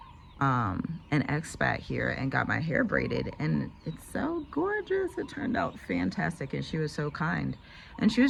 an Expat here and got my hair braided, and it's so gorgeous. It turned out fantastic, and she was so kind. And she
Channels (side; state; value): both; identical; correlation 1.00